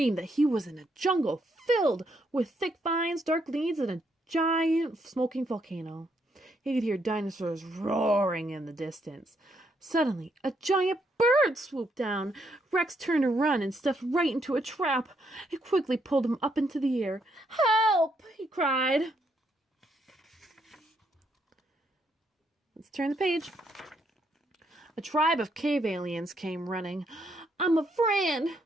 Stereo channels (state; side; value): normal; both; correlation 0.74